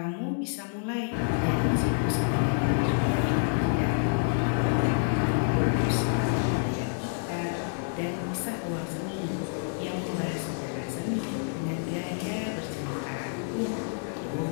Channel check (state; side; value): silent; right; 59 dB below the other